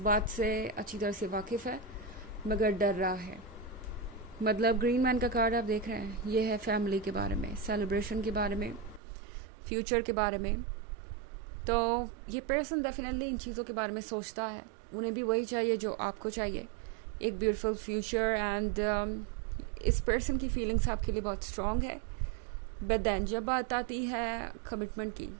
से अच्छी तरह से वाकिफ़ है मगर डर रहा है। मतलब ग्रीन मैन का कार्ड आप देख रहे हैं, ये है फैमिली के बारे में, सेलिब्रेशन के बारे में, फ्यूचर के बारे में। तो ये पर्सन डेफिनेटली इन चीज़ों के बारे में सोचता है। उन्हें भी वही चाहिए जो आपको चाहिए, एक ब्यूटीफुल फ्यूचर। एंड इस पर्सन की फीलिंग्स आपके लिए बहुत स्ट्रॉन्ग है। बट देन जब बात आती है कमिटमेंट की,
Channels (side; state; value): left; drops out; at 9.0 s